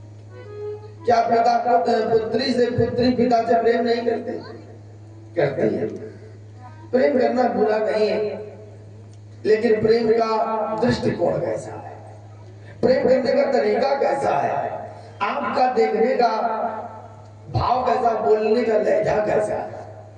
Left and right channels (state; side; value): identical; both; correlation 1.00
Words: क्या पिता पुत्री से पुत्री पिता से प्रेम नहीं करते? करते हैं। प्रेम करना बुरा नहीं है, लेकिन प्रेम का दृष्टिकोण कैसा है, प्रेम करने का तरीका कैसा है, आपका देखने का भाव कैसा, बोलने का लहजा कैसा है,